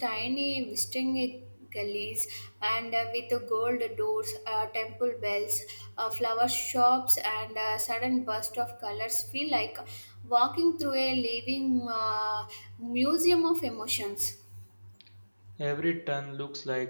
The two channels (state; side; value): inverted; both; correlation -1.00